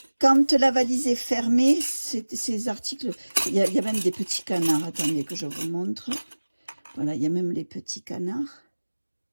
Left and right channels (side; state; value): both; inverted; correlation -1.00